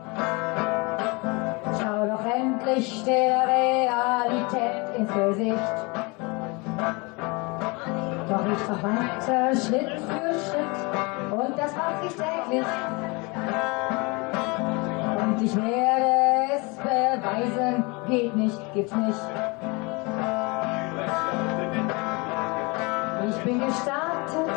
Schau doch endlich der Realität ins Gesicht. Doch ich mach weiter Schritt für Schritt und das mach ich täglich. Und ich werde es beweisen, geht nicht, gibt's nicht. Ich bin gestartet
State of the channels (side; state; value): right; quieter; 27.9 dB